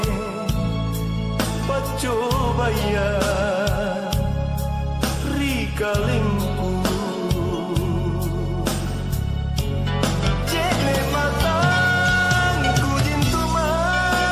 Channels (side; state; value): both; identical; correlation 1.00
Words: pacobaya rikalingku jene matangku jintu